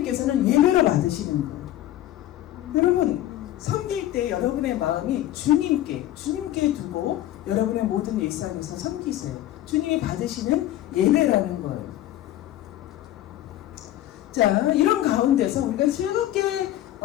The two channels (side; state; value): right; quieter; 13.6 dB